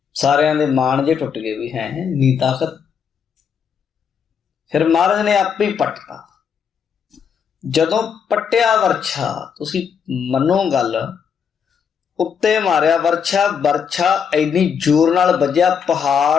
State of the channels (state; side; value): quieter; right; 7.0 dB